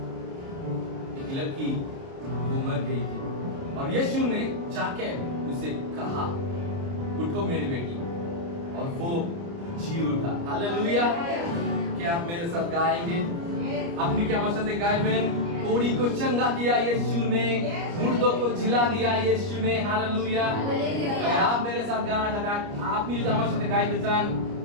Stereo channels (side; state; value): left; late; 29 ms